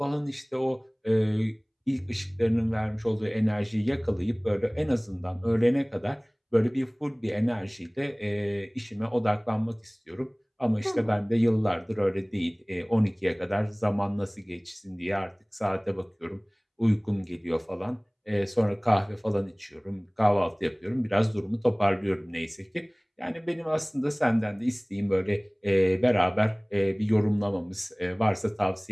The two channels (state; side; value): identical; both; correlation 1.00